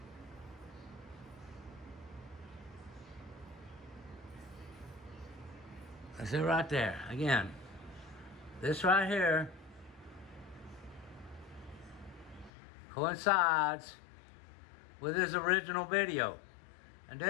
That's it right there. Again, this right here coincides with his original video. And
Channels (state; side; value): drops out; right; at 12.5 s